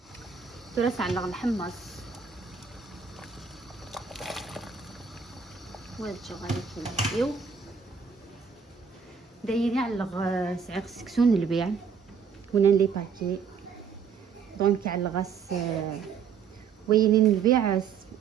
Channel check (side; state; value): left; quieter; 6.3 dB